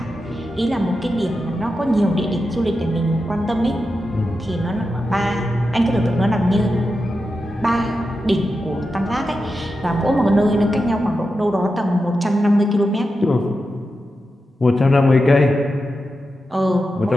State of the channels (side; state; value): both; normal; correlation 0.90